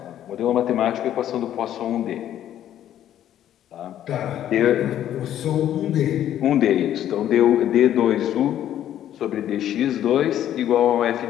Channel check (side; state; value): right; quieter; 11.3 dB